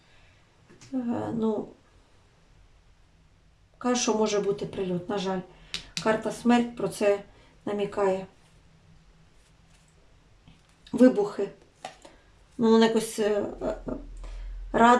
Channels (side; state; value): both; identical; correlation 1.00